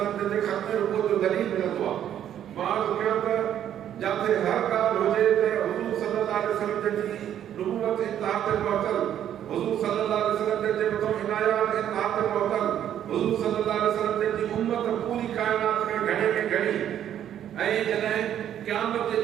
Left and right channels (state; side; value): quieter; left; 10.4 dB